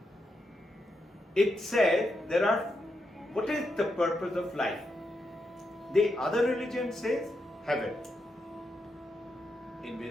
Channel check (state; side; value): normal; both; correlation 0.83